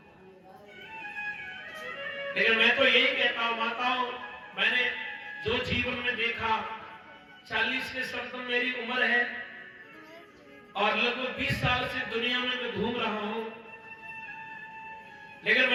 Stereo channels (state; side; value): identical; both; correlation 1.00